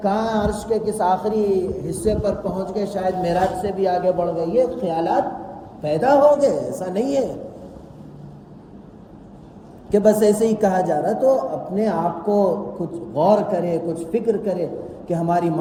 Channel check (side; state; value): both; identical; correlation 1.00